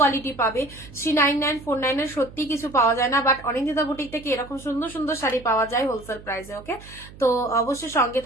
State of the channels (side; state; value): right; noise; hum, 19 dB below the sound